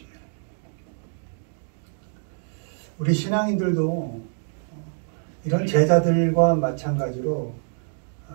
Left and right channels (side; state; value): left; silent; 56 dB below the other